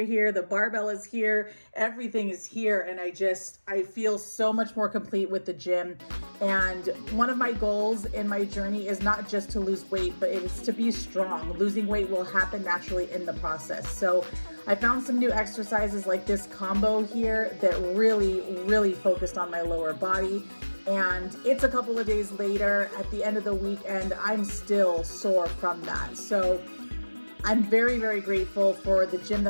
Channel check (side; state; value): both; inverted; correlation -1.00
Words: here, the barbell is here, everything is here. And I feel so much more complete with the gym. And one of my goals in my journey is not just to lose weight, but it is to be strong. Losing weight will happen naturally in the process. So I found some new exercises like this combo here that really focused on my lower body. And it's a couple of days later at the end of the week, and I'm still sore from that. So I'm very grateful for the gym